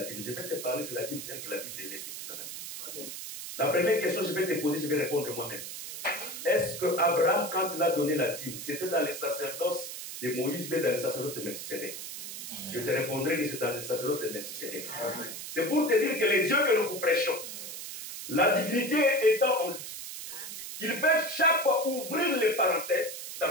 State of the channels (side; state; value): right; noise; hiss, 8 dB below the sound